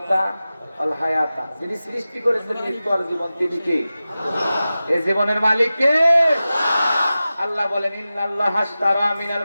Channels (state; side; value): inverted; both; correlation -0.95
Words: ওয়াল হায়াতা, যিনি সৃষ্টি করেছেন মৃত্যু আর জীবন, তিনি কে? এই জীবনের মালিক কে? আল্লাহ বলেন, ইন্নাল্লাহা আশতারা মিনাল